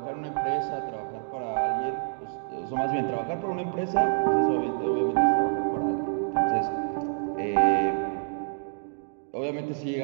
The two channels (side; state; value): left; silent; digital silence